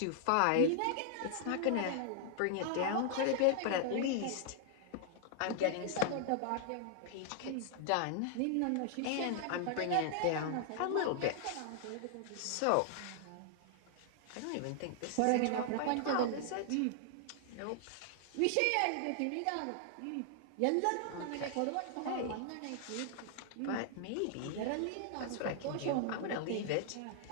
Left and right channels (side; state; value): both; different; correlation 0.00